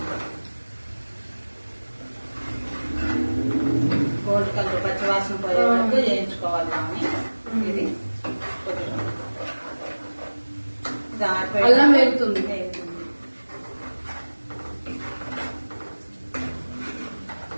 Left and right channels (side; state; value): both; inverted; correlation -1.00